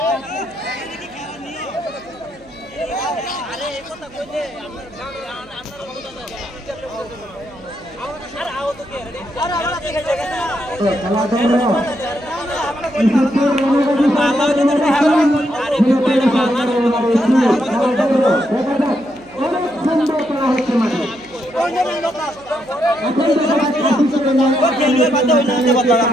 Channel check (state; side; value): noise; right; hum, 26 dB below the sound